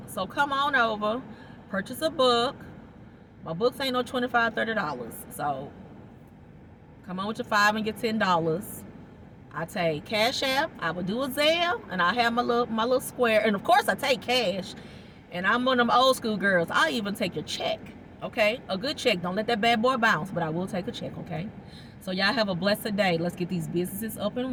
So come on over, purchase a book. My books ain't no $25, $30. So come on with your $5 and get $10. I take Cash App. I will do a Zelle, and I have my little square. And of course, I take cash. And I'm one of them old school girls. I'll even take your check. Okay, a good check. Don't let that bad boy bounce. But I will take a check. Okay. So y'all have a blessed day. Let's get these businesses up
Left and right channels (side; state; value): both; identical; correlation 1.00